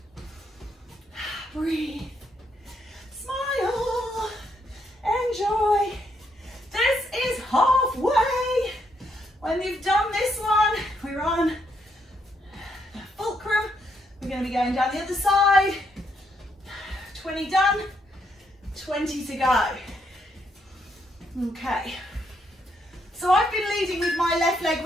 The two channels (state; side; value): normal; both; correlation 0.75